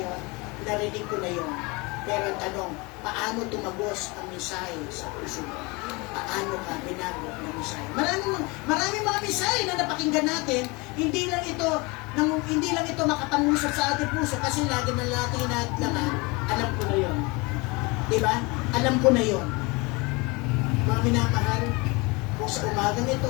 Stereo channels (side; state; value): right; quieter; 26.3 dB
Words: narinig ko na yon. Pero ang tanong, paano tumagos ang mensahe sa puso mo? Paano ka binago ng mensahe? Maraming mga mensahe na napakinggan natin, hindi lang ito makapangusap sa ating puso kasi lagi na natin hinahadlangan, alam ko na yon. Diba? Alam ko na yon. Mga minamahal, kung sa umagang